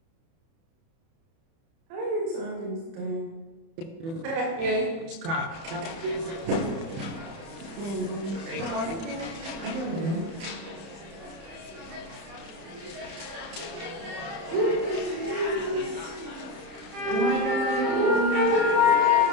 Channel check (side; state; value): left; late; 30 ms